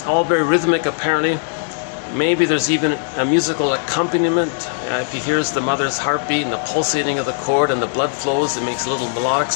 all very rhythmic apparently. Maybe there's even a musical accompaniment. If he hears the mother's heartbeat and the pulsating of the cord and the blood flows, it makes little melodic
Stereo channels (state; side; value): silent; right; digital silence